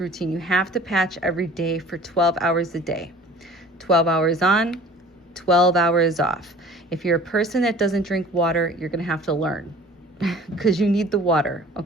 You have to patch every day for 12 hours a day. 12 hours on, 12 hours off. If you're a person that doesn't drink water, you're going to have to learn because you need the water,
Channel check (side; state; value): both; normal; correlation 0.46